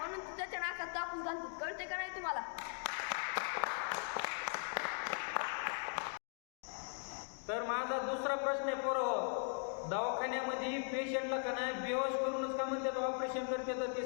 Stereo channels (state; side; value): silent; right; 51 dB below the other